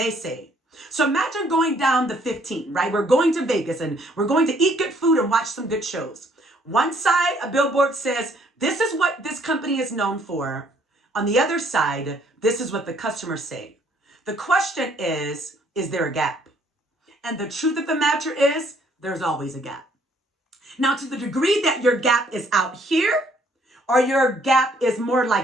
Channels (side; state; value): both; normal; correlation 0.64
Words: say? So imagine going down the 15, right? We're going to Vegas and we're going to eat good food and watch some good shows. One side, a billboard says, this is what this company is known for. On the other side, this is what the customers say. The question is there a gap? And the truth of the matter is, there's always a gap. Now, to the degree that your gap is out here, or your gap is more